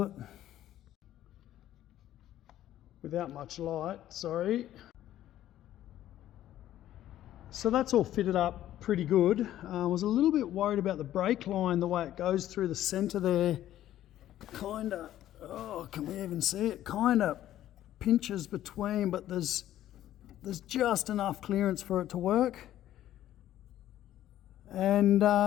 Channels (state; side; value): quieter; right; 12.8 dB